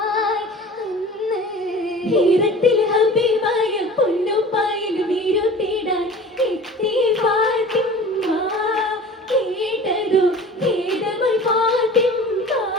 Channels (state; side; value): normal; both; correlation 0.41